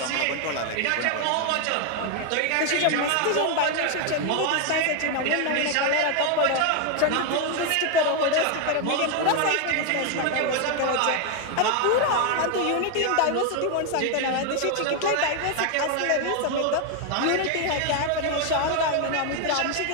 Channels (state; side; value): different; both; correlation 0.01